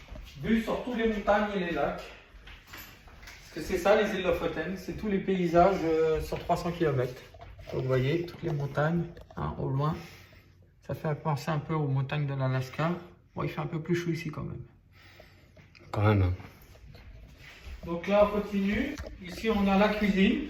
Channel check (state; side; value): identical; both; correlation 1.00